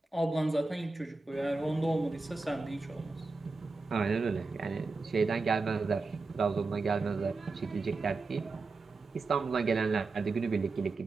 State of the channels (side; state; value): left; quieter; 3.8 dB